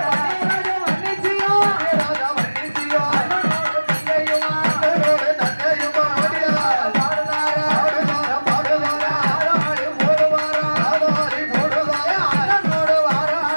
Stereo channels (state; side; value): inverted; both; correlation -1.00